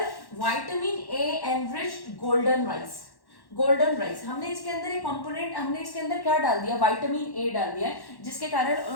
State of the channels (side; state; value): right; late; 1.1 ms